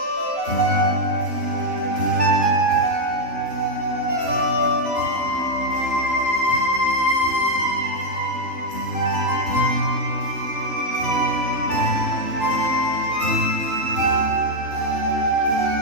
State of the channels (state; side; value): late; left; 3.0 ms